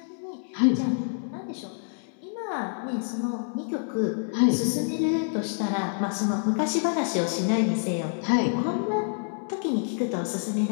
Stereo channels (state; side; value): silent; right; 60 dB below the other